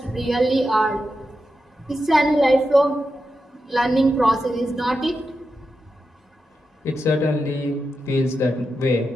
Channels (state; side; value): normal; both; correlation 0.89